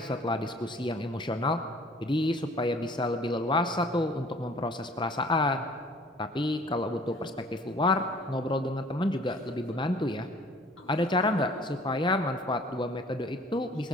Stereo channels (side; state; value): both; normal; correlation 0.53